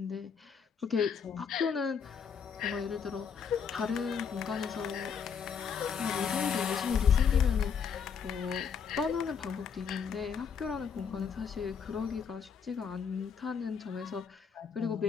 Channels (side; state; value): right; quieter; 6.7 dB